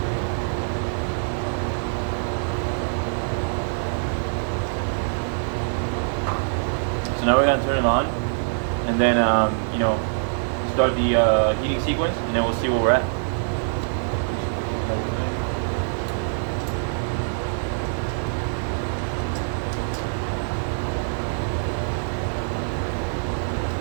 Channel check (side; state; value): left; silent; 62 dB below the other